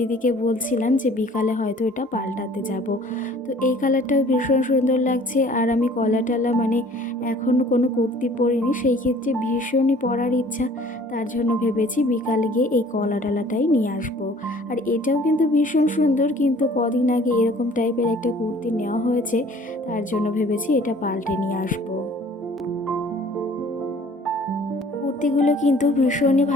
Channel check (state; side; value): normal; both; correlation 0.52